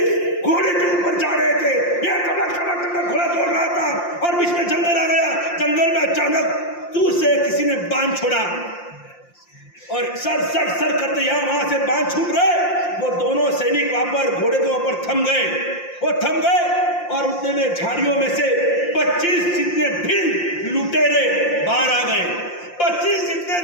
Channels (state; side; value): late; right; 5.7 ms